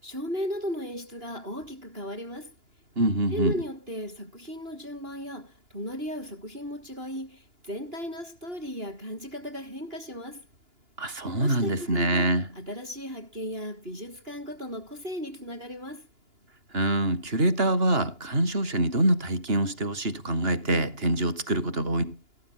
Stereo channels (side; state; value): left; late; 2.9 ms